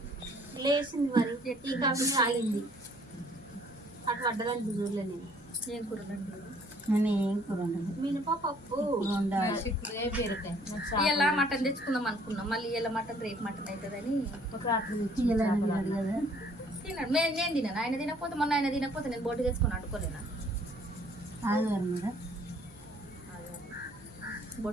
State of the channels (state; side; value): normal; both; correlation 0.59